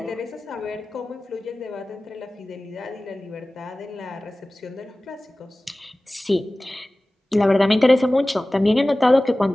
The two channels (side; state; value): both; normal; correlation 0.97